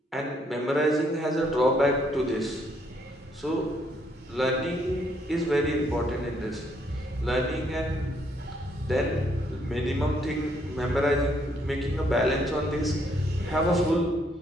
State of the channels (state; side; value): normal; both; correlation 0.70